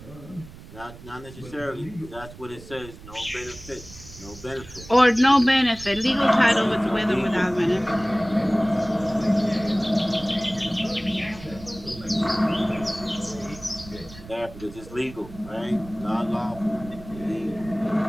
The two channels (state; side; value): noise; right; rumble, 17 dB below the sound